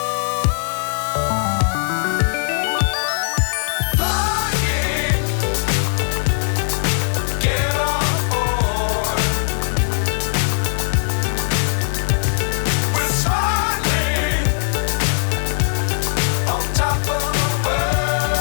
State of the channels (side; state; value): right; silent; digital silence